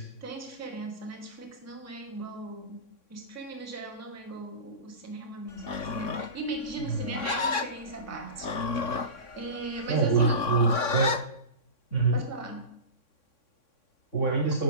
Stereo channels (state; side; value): late; right; 3.6 ms